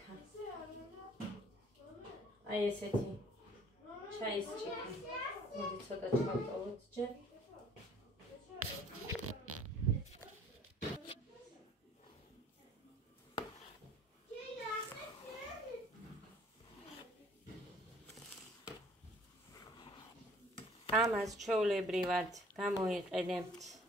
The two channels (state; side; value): normal; both; correlation 0.55